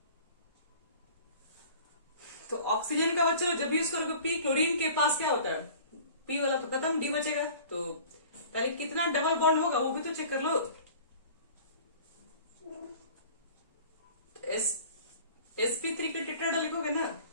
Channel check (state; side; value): inverted; both; correlation -0.45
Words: तो ऑक्सीजन का बच्चा जब यूज करोगे पी, क्लोरीन के पास क्या होता है, पी वाला तो खत्म, डी बचेगा। तो पहले कितना डबल बॉन्ड होगा वो भी तो चेक कर लो। sp3 के टेट्राहेड्रल लिखोगे ना,